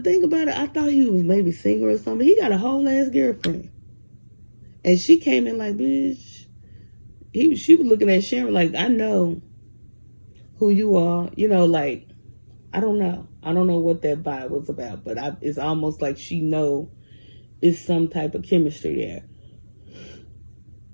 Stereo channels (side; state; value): both; inverted; correlation -1.00